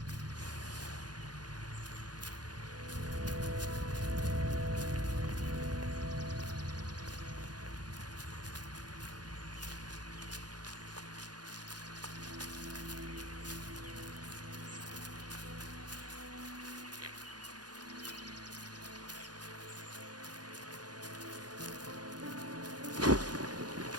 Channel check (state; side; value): late; left; 0.69 ms